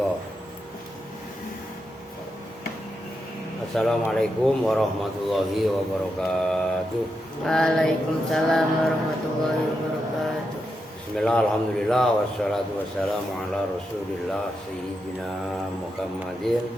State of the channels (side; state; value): both; normal; correlation 0.85